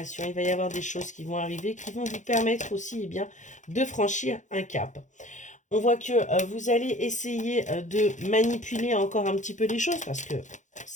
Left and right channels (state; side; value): late; right; 0.35 ms